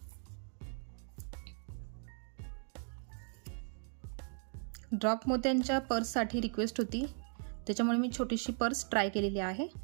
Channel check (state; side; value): silent; left; 53 dB below the other